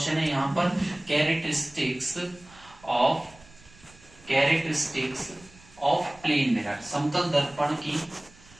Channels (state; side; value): noise; right; rumble, 25 dB below the sound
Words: है यहाँ पर, कैरेक्टरिस्टिक्स ऑफ प्लेन मिरर, समतल